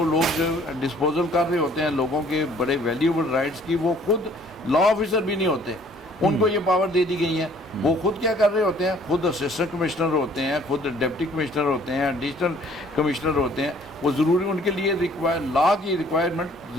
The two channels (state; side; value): normal; both; correlation 0.58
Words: لوگ ڈسپوزل کر رہے ہوتے ہیں لوگوں کے بڑے ویلیوبل رائٹس کی، وہ خود لا آفیسر بھی نہیں ہوتے، ان کو یہ پاور دے دی گئی ہیں۔ وہ خود کیا کر رہے ہوتے ہیں؟ خود اسسٹنٹ کمشنر ہوتے ہیں، خود ڈپٹی کمشنر ہوتے ہیں، ایڈیشنل کمشنر ہوتے ہیں۔ وہ ضروری ان کے لیے لا کی ریکوائرمنٹ